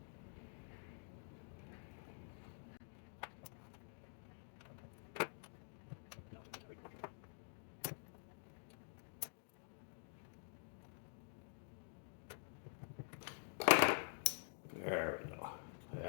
There we go.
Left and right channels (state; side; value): silent; right; digital silence